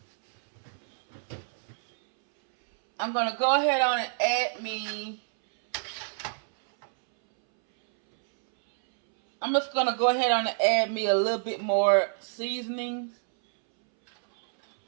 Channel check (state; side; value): silent; left; 60 dB below the other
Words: add me. I'm just going to go ahead on and add me a little bit more seasonings.